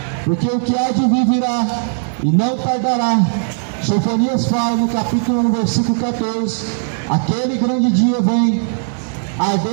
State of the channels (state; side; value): silent; left; digital silence